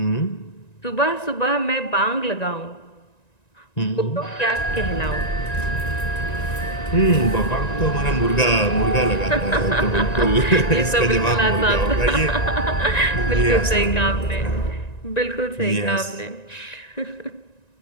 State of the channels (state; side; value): late; right; 1.9 ms